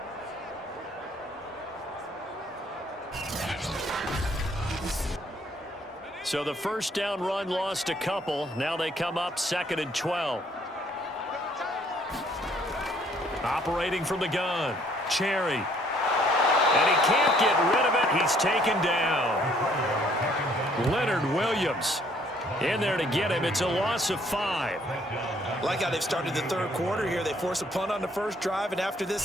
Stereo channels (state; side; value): normal; both; correlation 0.63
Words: So the first down run lost a couple. Now they come up 2nd and 12. Operating from the gun. Cherry. And he can't get rid of it. He's taken down. Leonard Williams in there to get him. It's a loss of 5. Like how they've started the third quarter here. They force a punt on the first drive, and after this